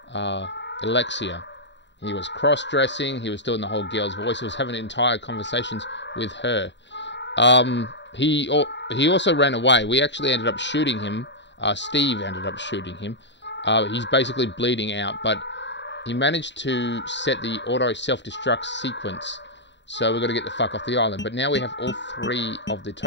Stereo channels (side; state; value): right; late; 0.52 ms